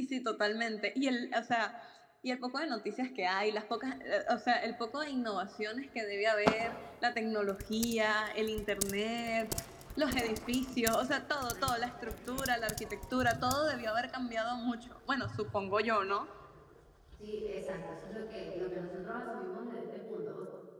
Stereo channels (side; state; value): both; identical; correlation 1.00